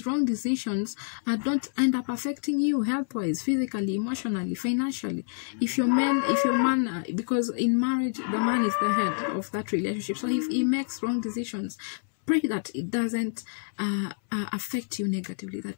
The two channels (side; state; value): right; silent; 60 dB below the other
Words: wrong decisions don't end up affecting you health-wise, physically, emotionally, financially. If your man, because in marriage, the man is the head of that relationship. So if he makes wrong decisions, pray that it doesn't affect you negatively,